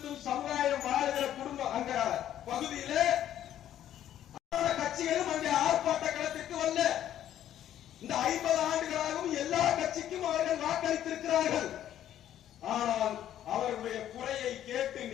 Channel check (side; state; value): right; quieter; 11.4 dB